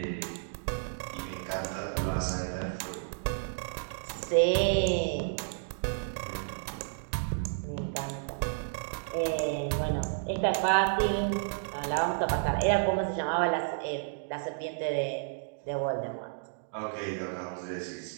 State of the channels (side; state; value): left; silent; digital silence